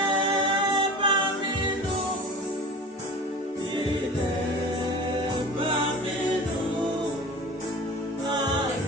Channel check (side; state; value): both; normal; correlation 0.36